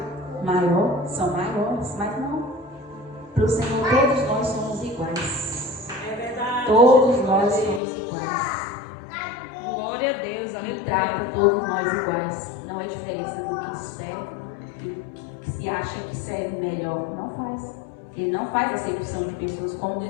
maior, são maiores, mas não. Para o Senhor todos nós somos iguais. Todos nós somos iguais. Glória a Deus, aleluia. Ele trata todos nós iguais. Não é diferença do que serve, que se acha que serve melhor. Não faz. Ele não faz acepção de pessoas como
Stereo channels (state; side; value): drops out; right; at 7.8 s